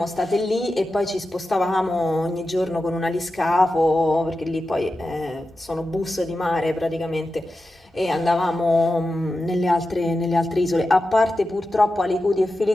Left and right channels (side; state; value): both; normal; correlation 0.91